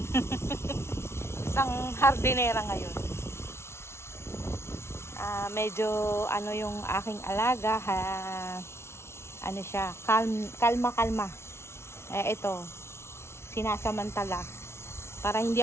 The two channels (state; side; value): late; right; 0.12 ms